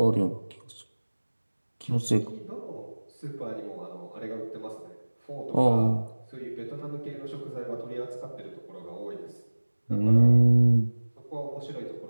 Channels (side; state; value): both; inverted; correlation -1.00